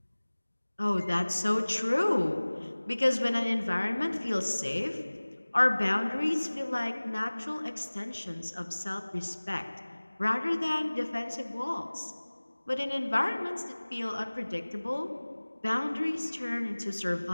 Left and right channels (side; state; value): both; inverted; correlation -1.00